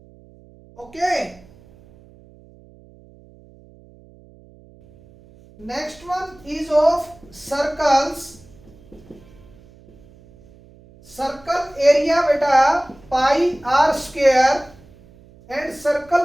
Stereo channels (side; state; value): right; noise; hum, 25 dB below the sound